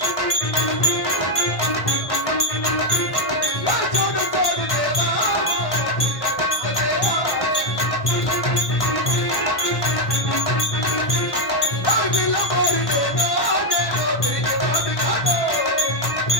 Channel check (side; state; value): right; late; 1.1 ms